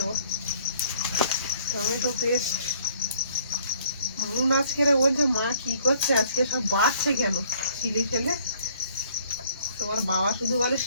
টমেটো পেস্ট। মুন আজকে বলছে মা কি করছে আজকে, সব বাড়ছে কেন চিলি ফেলে। তোমার বাবা শুধু বলে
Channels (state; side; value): inverted; both; correlation -0.61